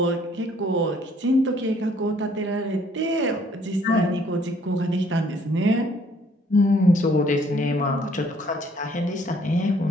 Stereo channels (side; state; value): both; normal; correlation 0.62